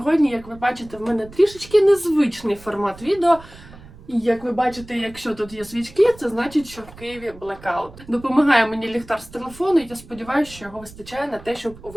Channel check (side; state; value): right; noise; rumble, 20 dB below the sound